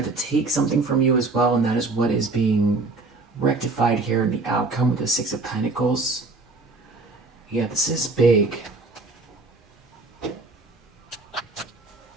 to take something from you as well, and that is what is being rectified here in the outcome with the Six of Pentacles. Yeah, this is big.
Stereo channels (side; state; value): left; quieter; 3.5 dB